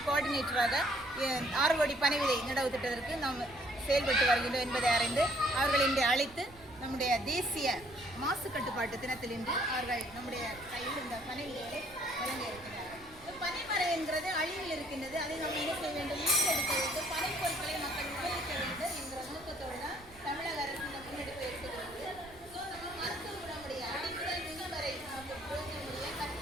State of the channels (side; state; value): right; noise; rumble, 22 dB below the sound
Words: கோஆர்டினேட்டராக 6 கோடி பனை விதை நடவு திட்டத்திற்கு நாம் செயல்பட்டு வருகின்றோம் என்பதை அறிந்து அவர்கள் இன்று அழைத்து நம்முடைய தேசிய மாசு கட்டுப்பாட்டு தினத்தில் இன்று அவர்கள் நம்முடைய கையில் இந்த பனை விதைகளை வழங்க இருக்கிறார்கள். பனைமரம் என்கிறது அழிவில் இருக்கின்றது. அதை நாம் என்ன செய்ய வேண்டும்? மீட்டெடுக்க வேண்டும். பனை பொருட்களை மக்கள் உபயோகிக்க வேண்டும் என்கிற நோக்கத்தோடு தான் தமிழக அரசு இந்த முன்னெடுப்பு எடுத்துக்கிறது. ஸோ நம்ம மருத்துவ குணமுடைய அடிமுதல் நுண்வரை பிரயோஜனமுடைய